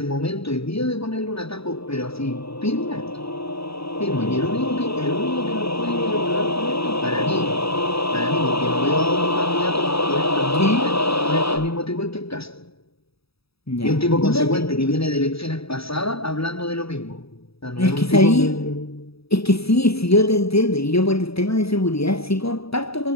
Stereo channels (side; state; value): right; late; 0.77 ms